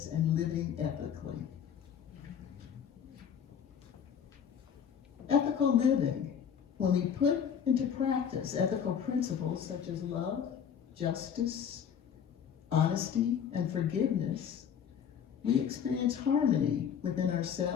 and living ethically. Ethical living. When we put into practice ethical principles such as love, justice, honesty, and forgiveness, we experience harmony within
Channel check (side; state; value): right; quieter; 8.0 dB